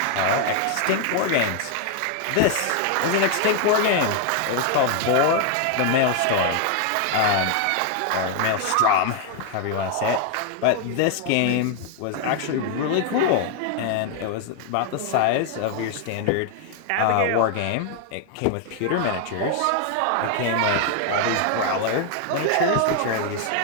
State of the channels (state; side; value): different; both; correlation 0.00